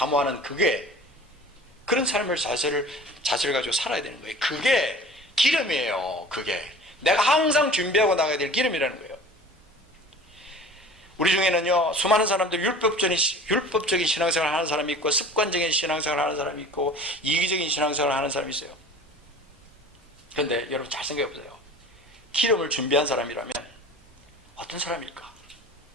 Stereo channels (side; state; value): both; normal; correlation 0.42